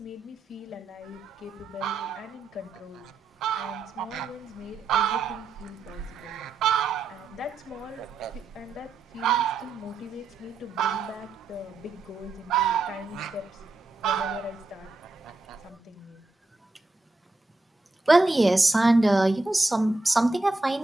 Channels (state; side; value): quieter; left; 3.3 dB